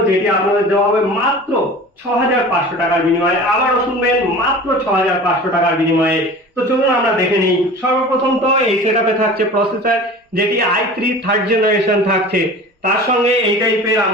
যেটি আপনাদের দেওয়া হবে মাত্র 6500 টাকার বিনিময়ে। আবারও শুনবেন, মাত্র 6500 টাকার বিনিময়ে। তো চলুন আমরা দেখে নিই। সর্বপ্রথম তো এই সেটআপে থাকছে প্রসেসর, যেটি i3 থার্ড জেনারেশন থাকছে। তার সঙ্গে এই টাইপের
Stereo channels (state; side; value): normal; both; correlation 0.38